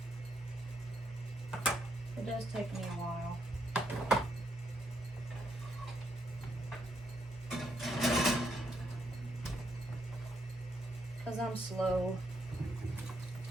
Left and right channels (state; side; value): normal; both; correlation 0.76